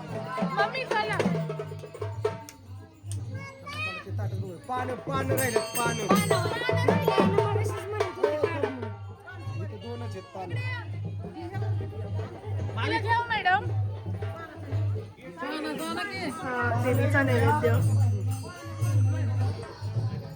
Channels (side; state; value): both; identical; correlation 1.00